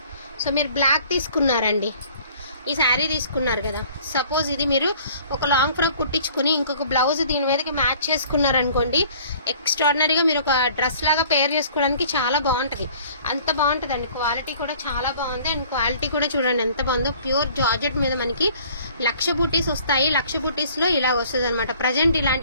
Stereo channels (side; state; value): both; inverted; correlation -0.53